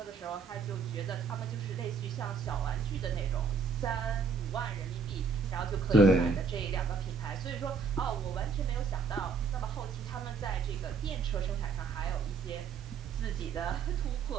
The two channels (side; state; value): left; quieter; 5.1 dB